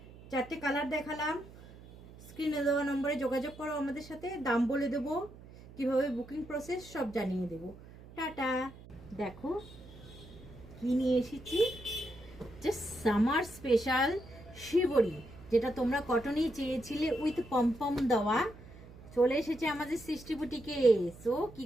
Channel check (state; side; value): noise; right; hum, 19 dB below the sound